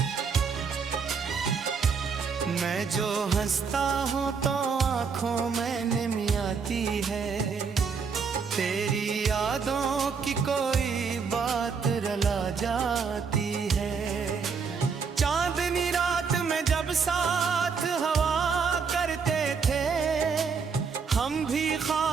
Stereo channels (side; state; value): left; quieter; 5.7 dB